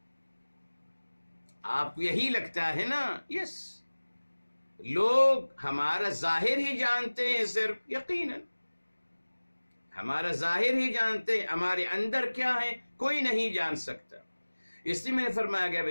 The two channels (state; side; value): inverted; both; correlation -1.00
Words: آپ کو یہی لگتا ہے نا؟ یس، لوگ ہمارا ظاہر ہی جانتے ہیں، صرف یقیناً ہمارا ظاہر ہی جانتے ہیں، ہمارے اندر کیا ہے کوئی نہیں جان سکتا. اس لیے میں نے فرمایا گیا